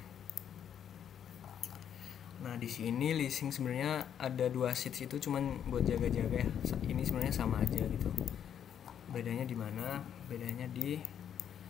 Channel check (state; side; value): quieter; right; 9.0 dB